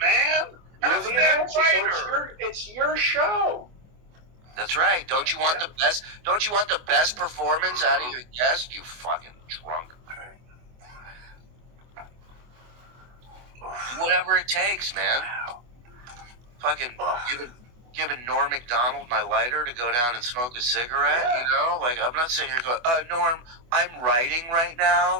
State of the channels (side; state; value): left; late; 24 ms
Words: And You're it's the a damn announcer, so writer. it's your show. That's right. Don't you want the best? Don't you want the best performance out of your guest? You fucking drunk. Do whatever it takes, man. Fucking giving Norm McDonald my lighter to go down and smoke a cigarette. Yeah. You know, like I'm not sitting here going, Norm, I'm writing right